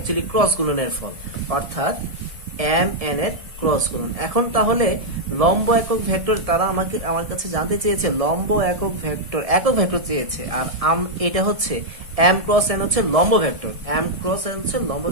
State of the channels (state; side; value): late; left; 1.7 ms